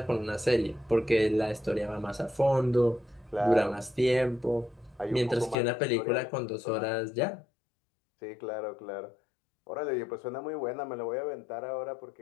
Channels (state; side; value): drops out; right; at 5.6 s